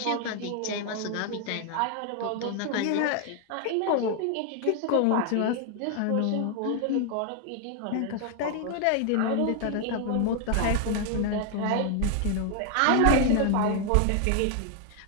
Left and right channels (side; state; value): both; different; correlation 0.00